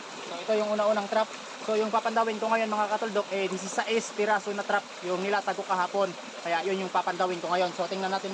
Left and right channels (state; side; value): identical; both; correlation 1.00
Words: So ito yung una-unang trap. So yung papandawin ko ngayon mga katuldok, 16 piraso na trap yung nilatag ko kahapon. Kaya yun yung papandawin ko ngayon. So tingnan